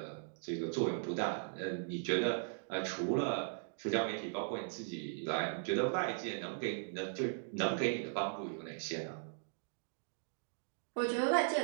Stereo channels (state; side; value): silent; left; digital silence